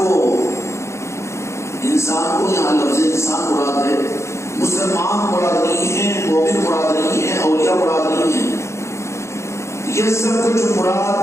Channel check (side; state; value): right; late; 0.14 ms